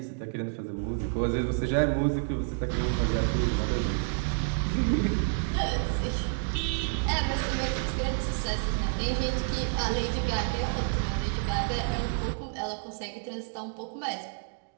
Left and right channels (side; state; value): left; silent; digital silence